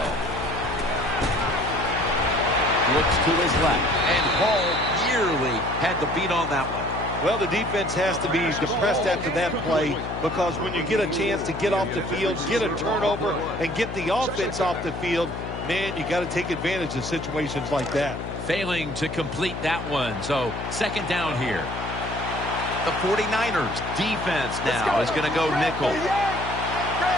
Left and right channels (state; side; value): noise; left; hum, 7 dB below the sound